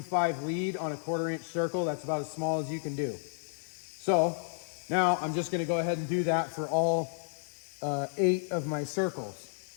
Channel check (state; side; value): silent; right; digital silence